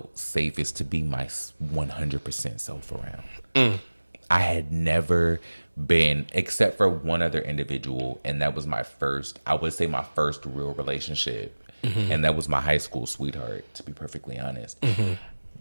safest to be my 100% self around. I had never been, except for one other individual, and that was my first real relationship. And that was my high school sweetheart, to be perfectly honest.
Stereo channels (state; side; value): inverted; both; correlation -1.00